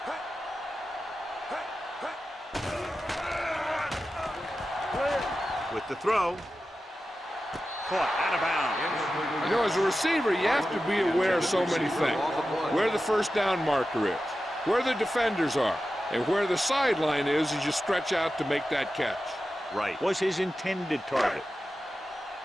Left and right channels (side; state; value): both; normal; correlation 0.93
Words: With the throw. Caught out of bounds. You know, as a receiver, you have to be aware of so many things. Where the first down marker is, where the defenders are, and where the sideline is as you stretch out to make that catch. Right. Was his intended target.